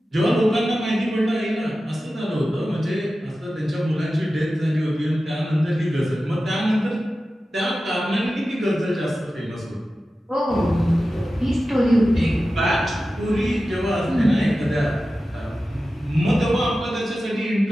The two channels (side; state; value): both; normal; correlation 0.94